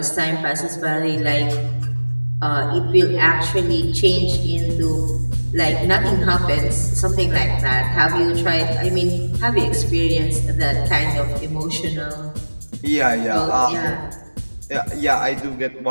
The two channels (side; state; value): both; inverted; correlation -1.00